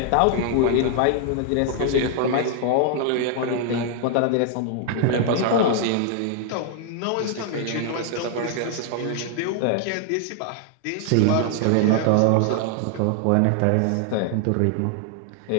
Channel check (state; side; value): different; both; correlation 0.00